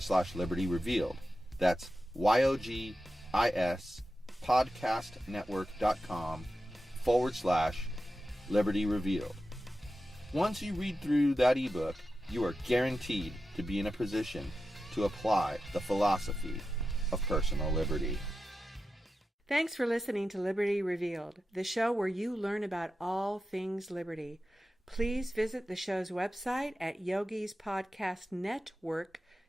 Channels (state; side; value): normal; both; correlation 0.91